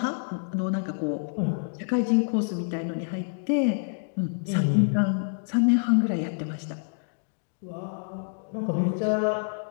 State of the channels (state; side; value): silent; right; digital silence